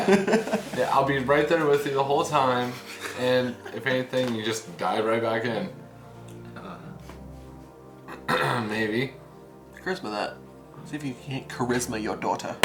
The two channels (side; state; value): both; identical; correlation 1.00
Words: I'll be right there with you the whole time, and if anything, you just dive right back in. Maybe. Charisma that. See if you can't charisma your daughter.